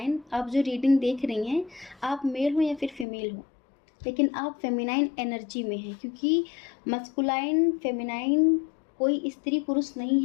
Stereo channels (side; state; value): right; drops out; at 3.1 s